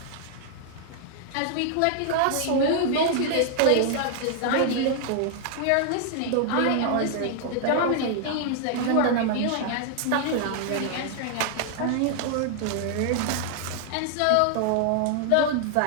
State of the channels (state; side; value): different; both; correlation 0.00